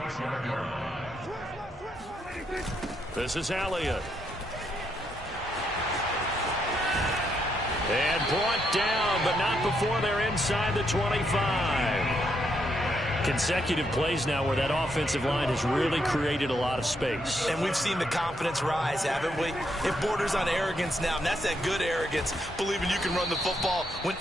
This is Elliott. And brought down, but not before they're inside the 25. Consecutive plays now where that offensive line has really created a lot of space. And we've seen the confidence rise, haven't we? It borders on arrogance now, and that's that good arrogance, believing you can run the football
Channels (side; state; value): both; normal; correlation 0.77